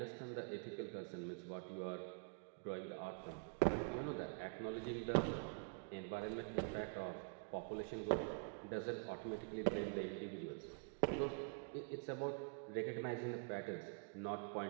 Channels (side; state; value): left; quieter; 38.7 dB